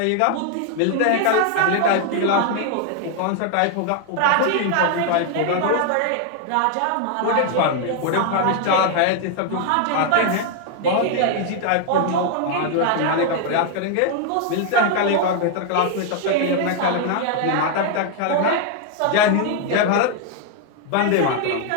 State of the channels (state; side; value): different; both; correlation 0.00